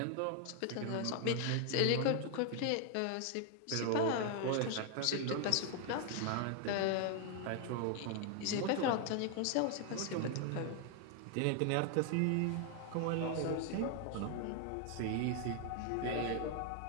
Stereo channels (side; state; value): both; different; correlation 0.00